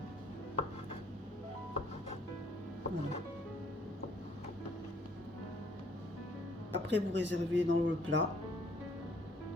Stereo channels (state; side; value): normal; both; correlation 0.62